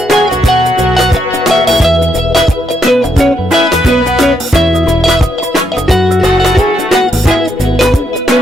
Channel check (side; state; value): both; normal; correlation 0.78